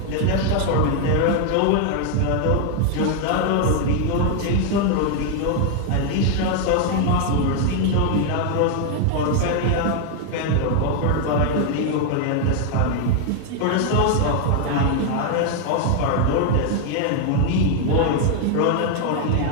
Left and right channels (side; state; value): both; different; correlation 0.00